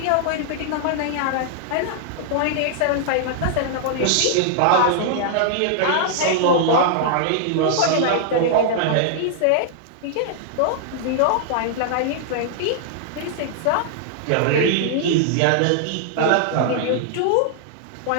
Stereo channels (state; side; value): different; both; correlation -0.01